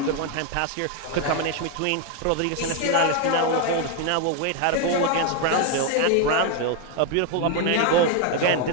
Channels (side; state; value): both; different; correlation 0.01